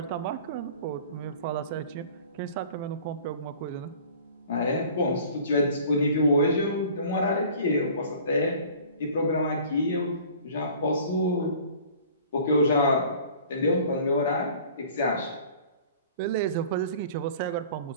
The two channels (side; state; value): both; inverted; correlation -0.47